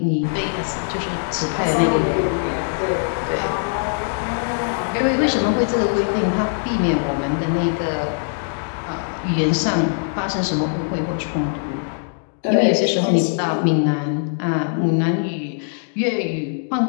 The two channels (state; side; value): silent; right; 65 dB below the other